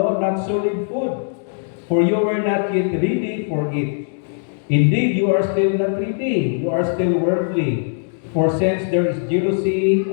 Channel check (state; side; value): silent; right; digital silence